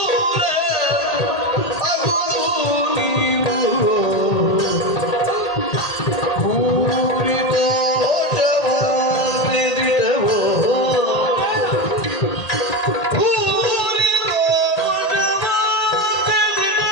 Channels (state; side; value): late; right; 1.8 ms